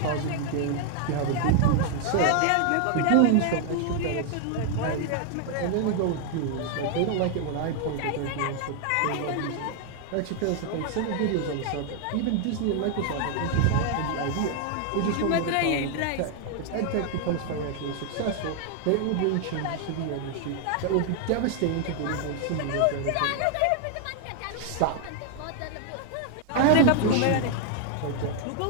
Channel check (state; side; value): different; both; correlation 0.00